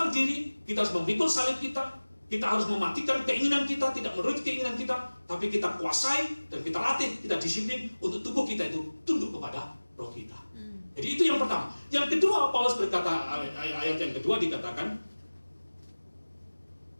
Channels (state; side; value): inverted; both; correlation -1.00